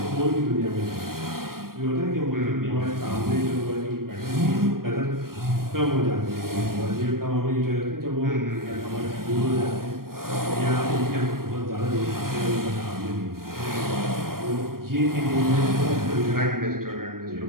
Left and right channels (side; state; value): left; late; 0.92 ms